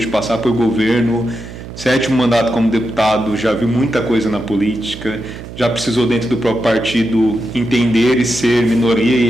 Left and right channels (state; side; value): noise; right; hum, 13 dB below the sound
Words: de passar por governo 7º mandato como deputado, já viu muita coisa na política, já precisou dentro do próprio partido entender e ser minoria